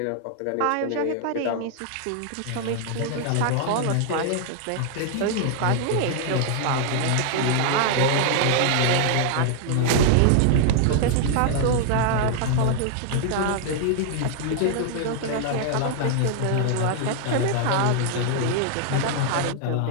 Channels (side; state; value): both; different; correlation -0.01